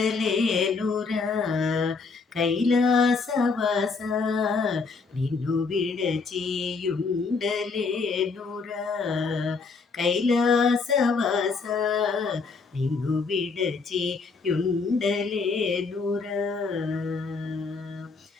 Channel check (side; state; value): right; quieter; 4.6 dB